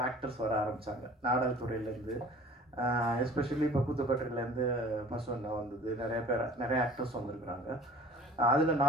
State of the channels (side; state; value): both; normal; correlation 0.46